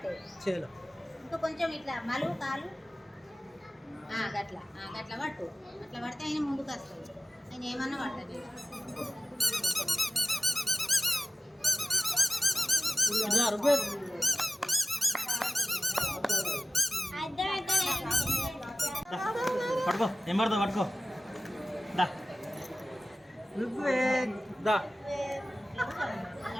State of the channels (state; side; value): normal; both; correlation 0.96